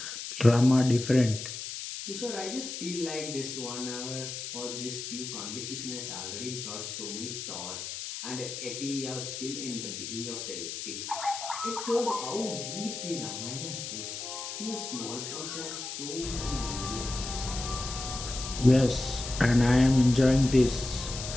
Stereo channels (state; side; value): noise; left; hiss, 7 dB below the sound